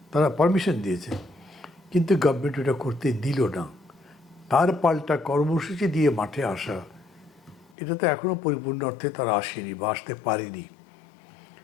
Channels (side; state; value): right; drops out; at 7.7 s